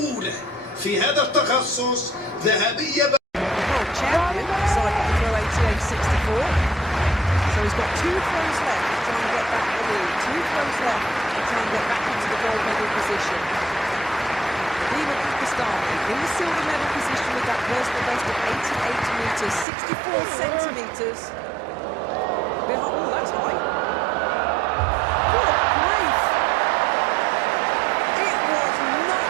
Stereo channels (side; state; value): left; drops out; at 19.7 s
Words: في هذا التخصص، ذهبية. So he's got 2 throws left to try and get back the lead. 2 throws left to try and get back into the gold medal position. Nadeem Pakistani in the silver medal position with that personal best of 88 metres, 64 centimetres. Oh, that's high. Good grief. It was